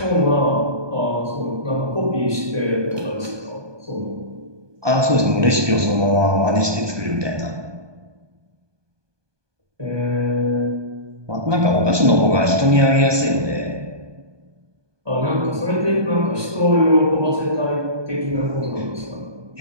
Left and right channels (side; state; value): left; late; 1.2 ms